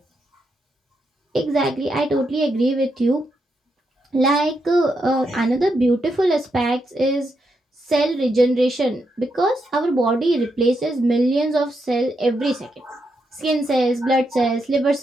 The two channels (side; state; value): both; normal; correlation 0.82